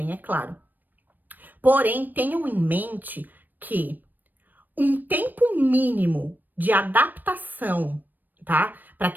é claro. Porém, tenham em mente que um tempo mínimo de adaptação, tá? Para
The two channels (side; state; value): left; late; 0.089 ms